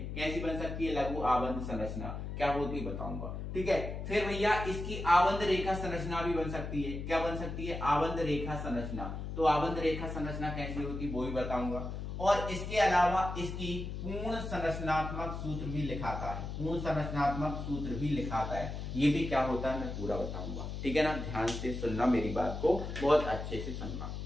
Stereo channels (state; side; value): noise; left; hum, 6 dB below the sound